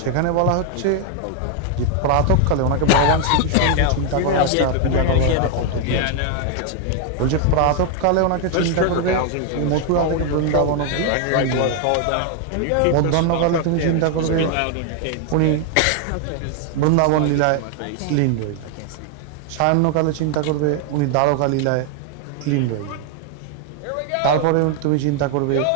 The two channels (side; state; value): both; different; correlation 0.00